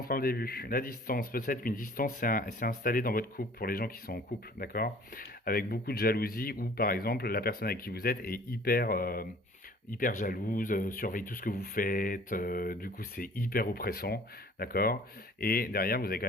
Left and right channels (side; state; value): both; normal; correlation 0.51